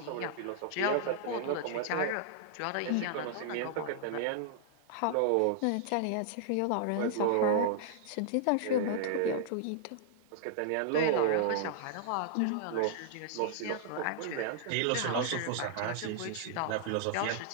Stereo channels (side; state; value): both; different; correlation -0.01